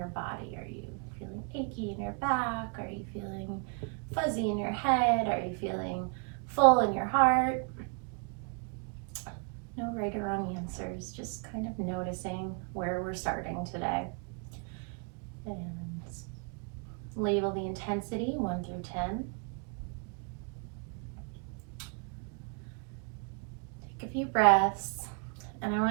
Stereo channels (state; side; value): quieter; left; 39.2 dB